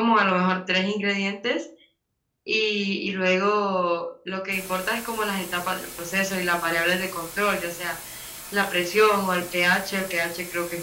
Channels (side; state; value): both; identical; correlation 1.00